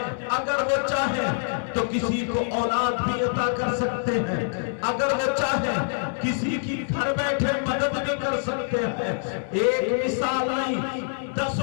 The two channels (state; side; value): silent; right; digital silence